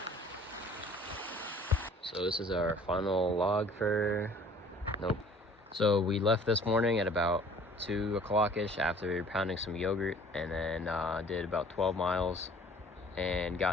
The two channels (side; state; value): both; normal; correlation 0.51